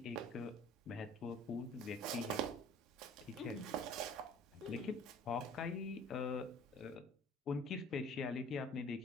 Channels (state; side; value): normal; both; correlation 0.49